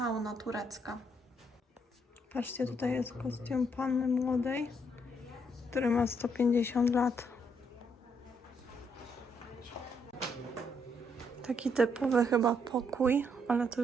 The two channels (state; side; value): normal; both; correlation 0.74